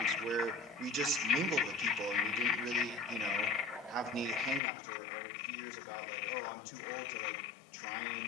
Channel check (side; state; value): right; drops out; at 4.6 s